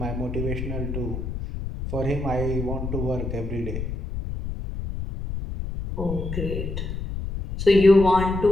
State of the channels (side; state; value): left; noise; rumble, 5 dB below the sound